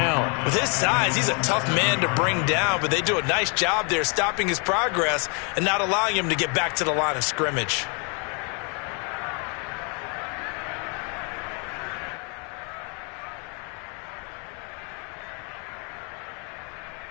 With his size, he's a tough man to bring down, but they do a nice job there stopping his progress and not allowing him to get back to the line of scrimmage.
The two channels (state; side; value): quieter; right; 35.6 dB